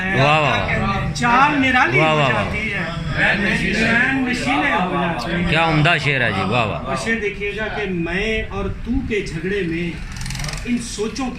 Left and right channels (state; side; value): identical; both; correlation 1.00